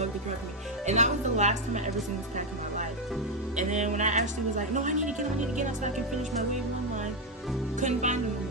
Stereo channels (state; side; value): normal; both; correlation 0.05